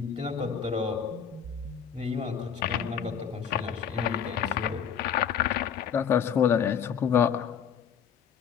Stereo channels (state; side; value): quieter; right; 7.8 dB